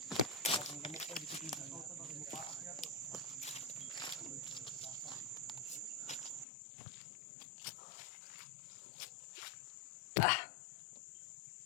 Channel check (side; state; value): right; drops out; at 6.5 s